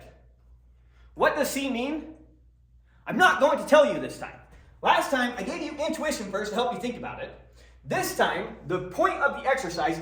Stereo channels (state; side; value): identical; both; correlation 1.00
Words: What does C mean? I'm not going to tell you this time. Last time, I gave you intuition first to help you think about it. This time, the point of the exercise